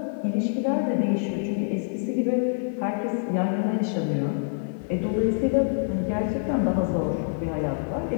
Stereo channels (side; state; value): right; silent; 61 dB below the other